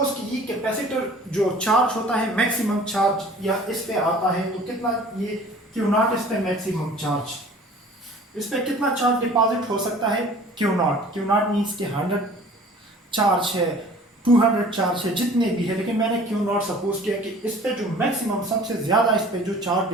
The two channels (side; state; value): both; normal; correlation 0.48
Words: कि ये कैपेसिटर जो चार्ज होता है, मैक्सिमम चार्ज या इस पे आता है, तो कितना ये क्यू नॉट, इस पे मैक्सिमम चार्ज, इस पे कितना चार्ज डिपॉजिट हो सकता है? Q not. Q not means कि 100 चार्ज है, 200 चार्ज है, जितने भी है, लेकिन मैंने क्यू नॉट सपोज किया कि इस पे जो मैक्सिमम, सबसे ज्यादा इस पे जो चार्ज